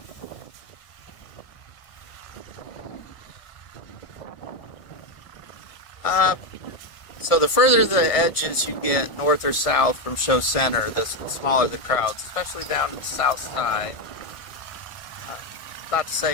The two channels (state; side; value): late; right; 1.6 ms